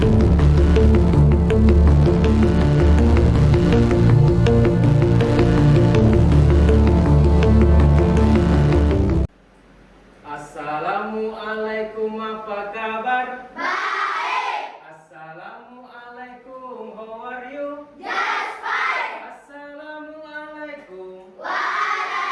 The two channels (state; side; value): identical; both; correlation 1.00